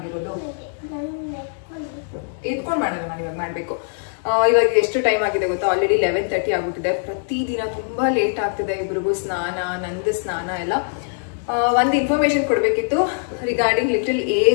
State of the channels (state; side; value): silent; right; digital silence